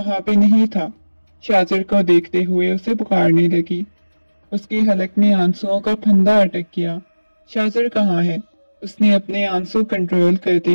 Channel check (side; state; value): both; inverted; correlation -1.00